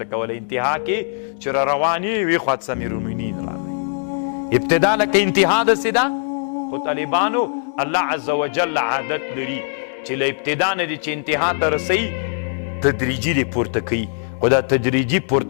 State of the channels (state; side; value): silent; right; digital silence